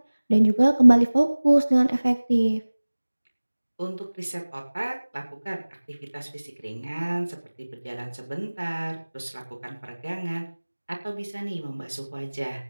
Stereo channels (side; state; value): both; inverted; correlation -1.00